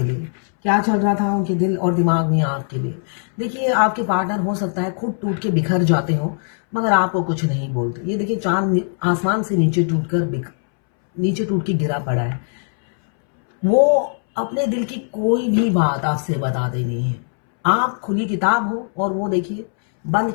लिए, क्या चल रहा था उनके दिल और दिमाग में आपके लिए। देखिए आपके पार्टनर हो सकता है खुद टूट के बिखर जाते हो, मगर आपको कुछ नहीं बोलते। ये देखिए चांद आसमान से नीचे टूट के गिरा पड़ा है। वो अपने दिल की कोई भी बात आपसे बताते नहीं है। आप खुली किताब हो और वो देखिए बंद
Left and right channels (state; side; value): silent; right; 66 dB below the other